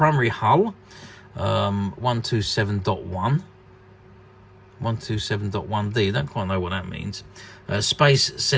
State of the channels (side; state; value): both; identical; correlation 1.00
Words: hull, 127.1. 127.1D, don't quite know what that means. Space